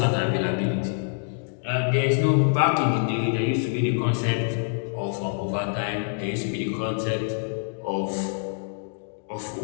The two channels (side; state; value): right; silent; digital silence